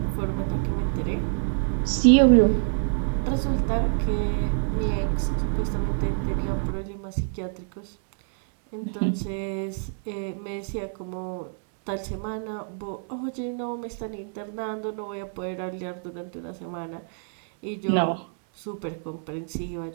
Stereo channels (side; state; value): left; silent; 60 dB below the other